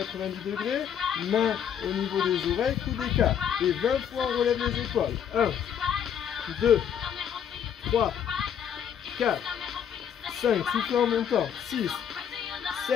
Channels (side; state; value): right; quieter; 8.7 dB